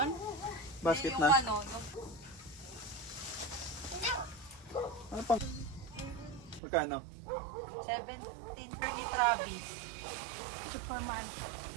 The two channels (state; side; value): drops out; left; at 6.6 s